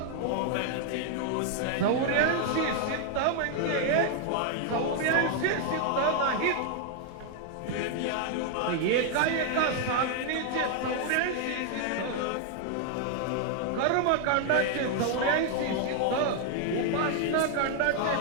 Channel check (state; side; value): different; both; correlation 0.00